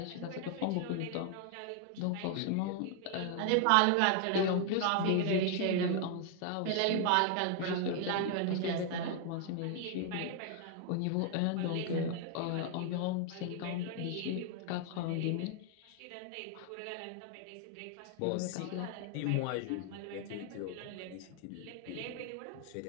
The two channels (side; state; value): both; different; correlation 0.00